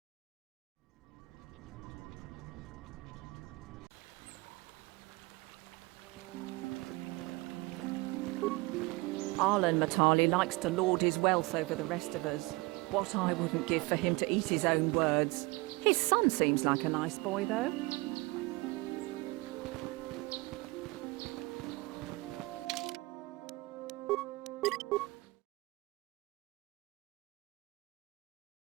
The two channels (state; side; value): quieter; left; 23.9 dB